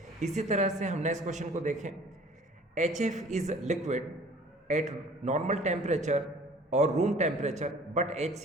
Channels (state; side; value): normal; both; correlation 0.50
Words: इसी तरह से हम नेक्स्ट क्वेश्चन को देखें, HF is liquid at normal temperature और room temperature but